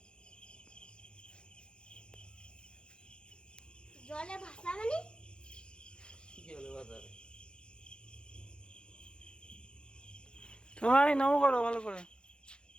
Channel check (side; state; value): right; late; 0.052 ms